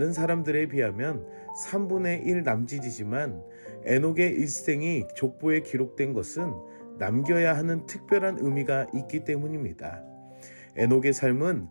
사람들에 비하면 3분의 1 남짓이지만 에녹의 일생이 족보에 기록된 것은 남겨야 하는 특별한 의미가 있기 때문입니다. 에녹의 삶은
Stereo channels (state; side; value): inverted; both; correlation -1.00